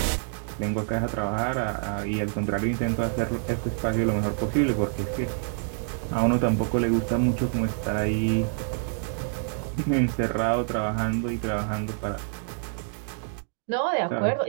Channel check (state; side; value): silent; left; 60 dB below the other